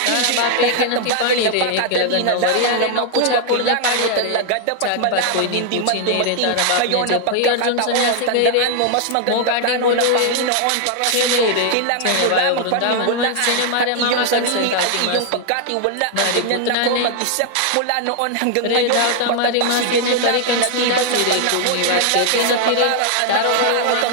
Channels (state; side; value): different; both; correlation 0.00